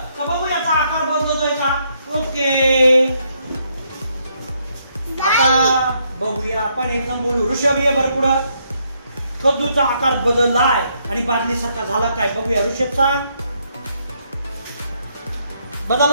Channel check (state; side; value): inverted; both; correlation -0.74